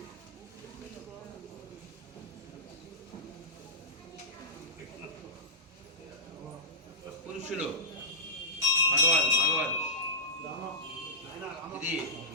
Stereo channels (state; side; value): normal; both; correlation -0.18